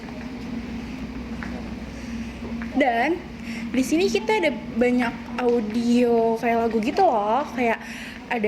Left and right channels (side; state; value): both; identical; correlation 1.00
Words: Dan di sini kita ada banyak audio kayak lagu gitu loh, kayak